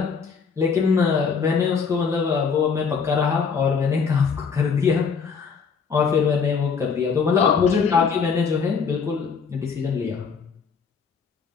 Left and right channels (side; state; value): right; quieter; 5.8 dB